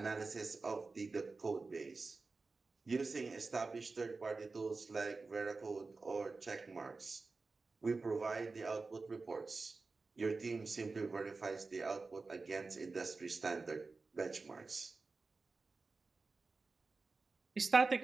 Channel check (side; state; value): left; quieter; 3.9 dB